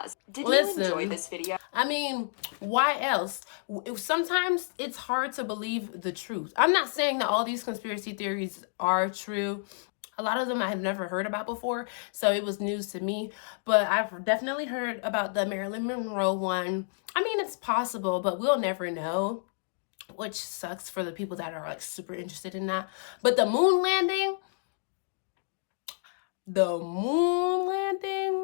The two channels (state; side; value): silent; right; digital silence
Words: Did Listen, you enjoy this video? I mean, why else? Sometimes it's hard to believe the truth. I'm not saying that all these conspiracy theories are true. A lot of them I had never heard about before, so it was news to me. But I've definitely heard about the Marilyn Monroe one. I mean, it's possible, but we'll never know, which sucks for the people that are like super interested in that. But the moon landing,